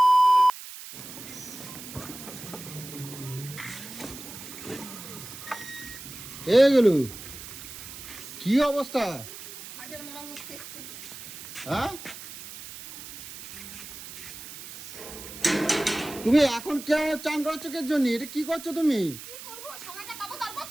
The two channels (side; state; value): right; noise; hiss, 13 dB below the sound